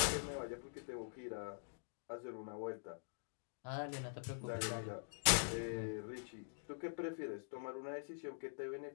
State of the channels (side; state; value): right; silent; digital silence